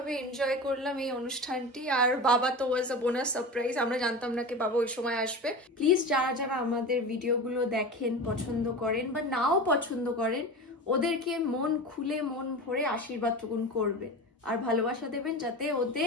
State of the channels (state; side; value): normal; both; correlation 0.29